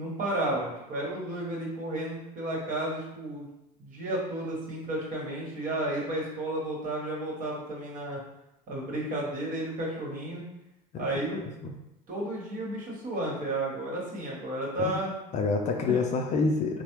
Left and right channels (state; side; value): normal; both; correlation 0.30